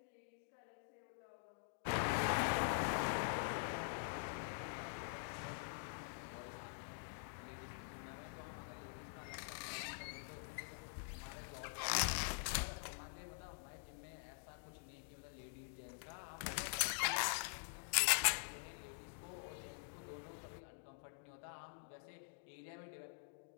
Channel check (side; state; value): right; silent; digital silence